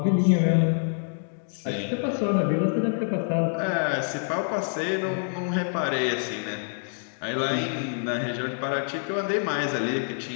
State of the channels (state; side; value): silent; right; 61 dB below the other